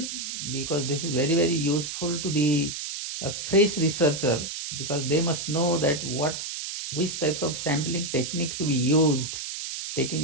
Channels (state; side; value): noise; right; hiss, 6 dB below the sound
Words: because this is very useful to the fresh researcher, because they must know that which types of sampling technique to be used, taking